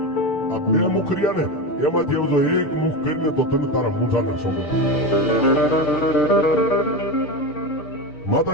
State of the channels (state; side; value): late; right; 6.7 ms